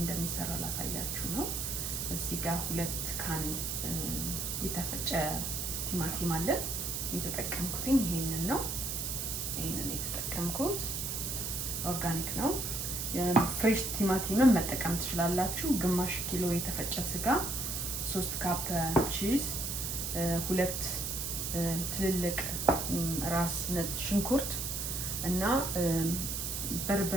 ላሳያችሁ ነው። እዚህ ጋር 2 ካን የተፈጨ ቲማቲም አለ። የተጠቀምኩት ይሄንን ነው። ይሄንን የተጠቀምኩት ኦርጋኒክ ነው። ፍሬሽ ቲማቲምን መጠቀም ትችላላችሁ። ግማሽ ኪሎ የተፈጨ ስጋ፣ 3 ካፕ ቺዝ፣ 2 ትልልቅ ራስ ነጭ ሽንኩርት እና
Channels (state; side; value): noise; right; hiss, 2 dB below the sound